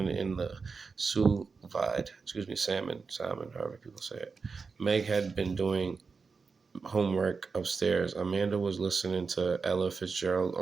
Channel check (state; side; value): quieter; left; 4.9 dB